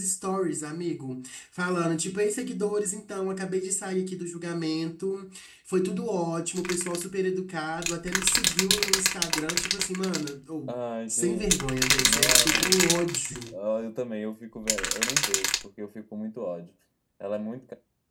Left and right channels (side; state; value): both; identical; correlation 1.00